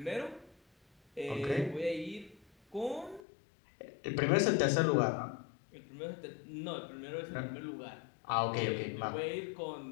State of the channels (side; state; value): right; drops out; at 3.2 s